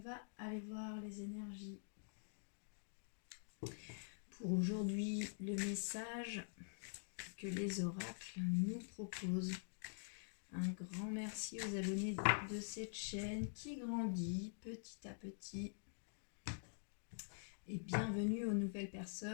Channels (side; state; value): right; silent; digital silence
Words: aller voir les énergies. Pour aujourd'hui, le message que les oracles nous proposent. Un grand merci aux abonnés de cette chaîne qui grandit petit à petit. Et bienvenue aux nouvelles